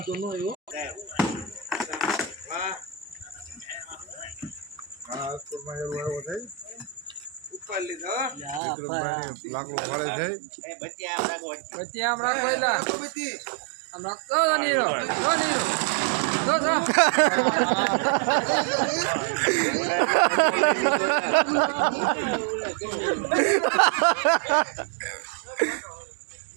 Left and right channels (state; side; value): drops out; left; at 8.6 s